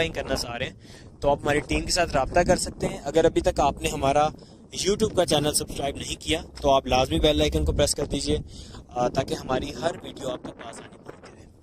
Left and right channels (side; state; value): both; identical; correlation 1.00